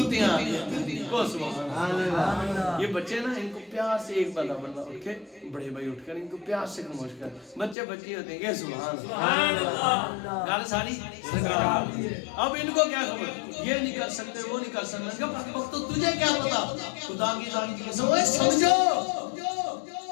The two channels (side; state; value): right; drops out; at 7.8 s